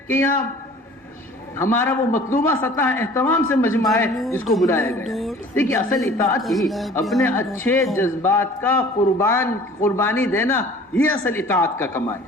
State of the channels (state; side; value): normal; both; correlation 0.48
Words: کہ یہاں ہمارا وہ مطلوبہ سطح اہتمام سے مجمع ہے جس کو بلایا گیا. دیکھیے اصل اطاعت ہی اپنے اچھے جذبات کا قربانی دینا, یہ اصل اطاعت کا کمال